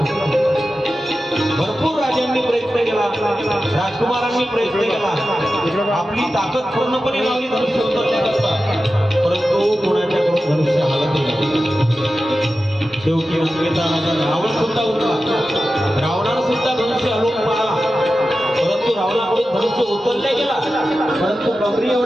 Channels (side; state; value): both; normal; correlation 0.93